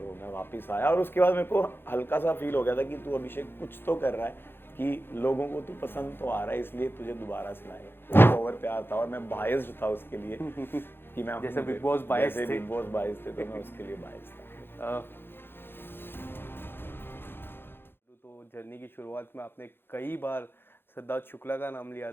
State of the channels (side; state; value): right; late; 0.10 ms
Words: मैं वापस आया, और उसके बाद मेरे को हल्का सा फील हो गया था कि तू अभिषेक कुछ तो कर रहा है, कि लोगों को तू पसंद तो आ रहा है, इसलिए तुझे दोबारा से लाएगा। ओवर प्यार था, और मैं बायस्ड था उसके लिए कि मैं जैसे बिग बॉस बायस्ड थे। बिग बॉस बायस्ड थे, तो मैं उसके लिए बायस्ड था। तो जर्नी की शुरुआत में आपने कई बार सिद्धार्थ शुक्ला का नाम लिया